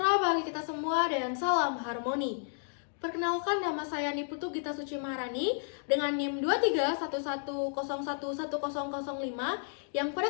bagi kita semua dan salam harmoni. Perkenalkan, nama saya Niputu Gita Suci Maharani dengan NIM 2311011005 yang pada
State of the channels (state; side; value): silent; right; digital silence